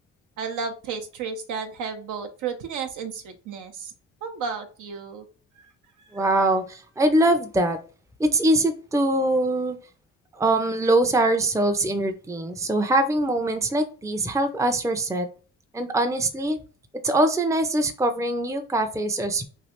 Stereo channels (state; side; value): normal; both; correlation 0.48